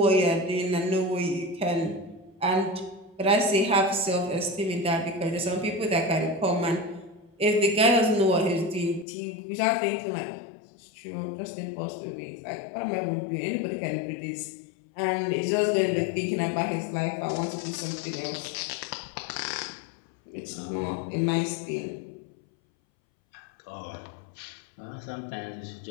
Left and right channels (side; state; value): right; drops out; at 9.1 s